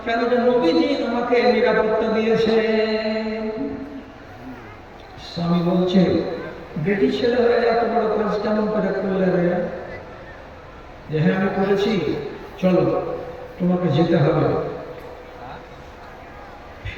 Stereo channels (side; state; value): both; identical; correlation 1.00